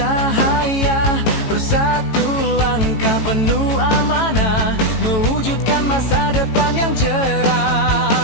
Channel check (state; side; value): late; right; 18 ms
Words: Bersatu langkah penuh amanah, mewujudkan masa depan yang